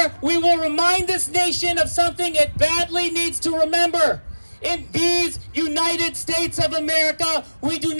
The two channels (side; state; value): both; inverted; correlation -1.00